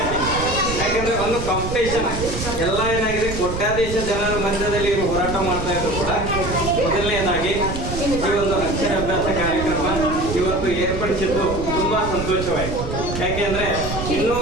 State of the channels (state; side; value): noise; right; rumble, 6 dB below the sound